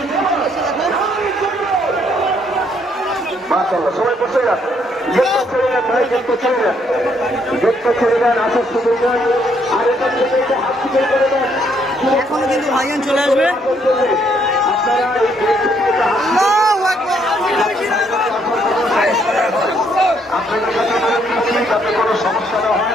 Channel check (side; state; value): both; normal; correlation 0.70